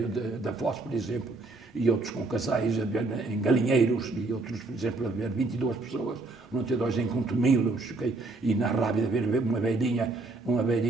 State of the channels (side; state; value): left; quieter; 3.3 dB